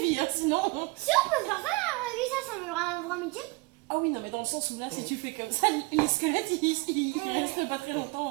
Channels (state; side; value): quieter; left; 25.2 dB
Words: vie, hein, sinon. Si on peut faire ça dans la vraie vie, ça me rend un vrai métier. Ah oui, non, mais dans le sens où là, si tu fais comme ça, les squelettes, ils restent pas très